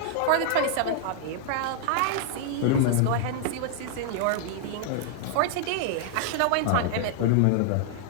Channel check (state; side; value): different; both; correlation -0.01